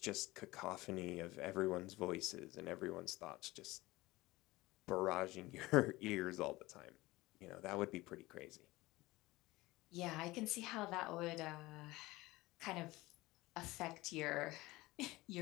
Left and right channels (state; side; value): quieter; right; 19.8 dB